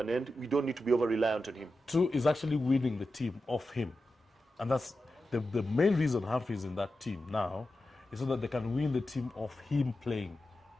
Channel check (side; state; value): both; normal; correlation 0.91